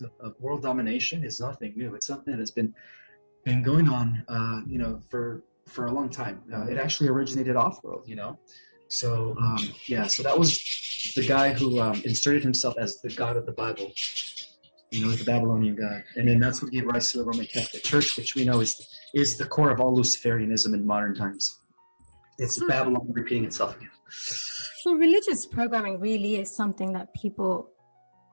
of world domination is nothing new. It's something that has been going on, for a long time. It actually originated off-world, So, so that was the guy who inserted himself as the God of the Bible. The Babylonian God. And then that's what gave rise to the Roman Catholic Church, which we know is the core of all Luciferianism in modern times. It's Babylon repeating itself again. So religious programming really is something that people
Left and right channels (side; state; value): both; inverted; correlation -1.00